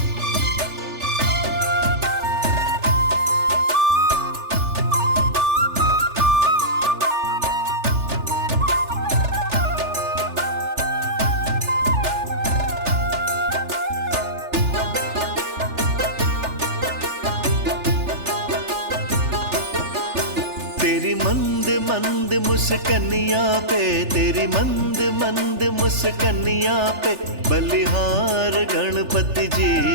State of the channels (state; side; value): late; left; 3.4 ms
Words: तेरी मंद मंद मुस्कनिया पे, तेरी मंद मंद मुस्कनिया पे, बलिहार गणपति जी,